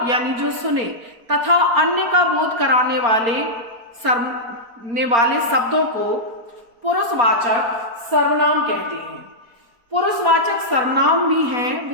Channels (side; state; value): left; late; 4.3 ms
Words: यानी जो सुने, तथा अन्य का बोध कराने वाले शब्दों को पुरुषवाचक सर्वनाम कहते हैं। पुरुषवाचक सर्वनाम भी हैं,